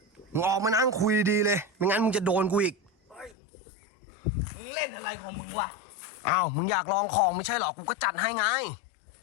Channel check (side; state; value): right; drops out; at 3.4 s